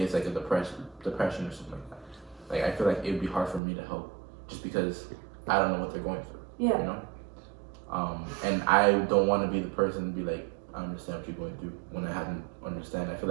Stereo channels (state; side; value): drops out; left; at 3.6 s